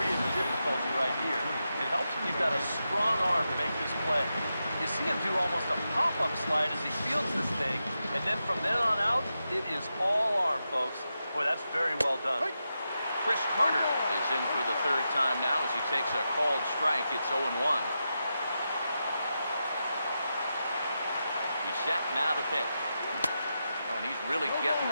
of difficulty right here. It helps when you've got a strong arm to make this play. You see him do almost a pop-up slide as he fields this thing, and then from then on out, it is all arm, folks. Boy, that's very well done. Chris Carter is in for the 3rd time now as he takes a called strike. It's 0-1. He's set. Now the pitch. Oh, and he's really getting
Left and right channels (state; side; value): inverted; both; correlation -0.88